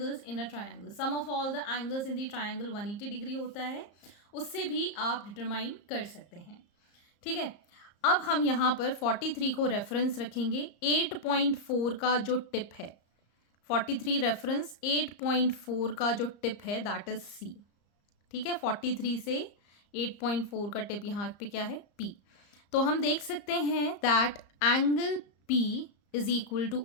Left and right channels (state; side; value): late; right; 34 ms